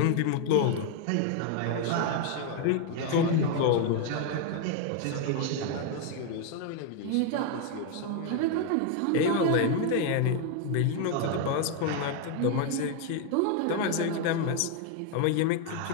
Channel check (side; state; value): both; different; correlation 0.01